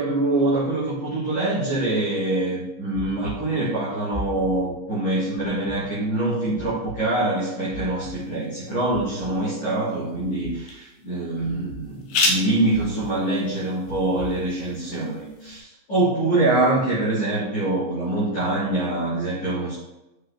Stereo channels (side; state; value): right; late; 15 ms